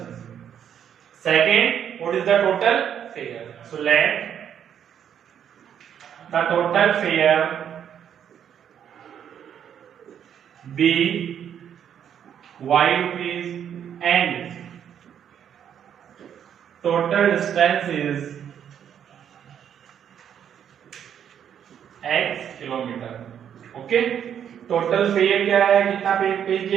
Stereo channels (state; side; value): quieter; left; 9.0 dB